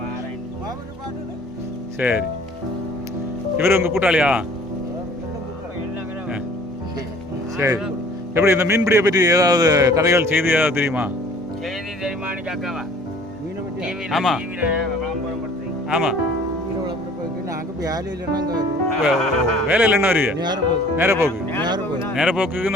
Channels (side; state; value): both; normal; correlation 0.52